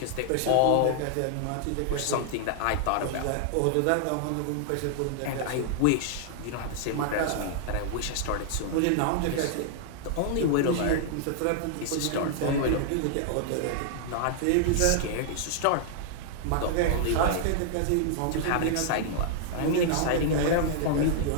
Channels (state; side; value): different; both; correlation -0.01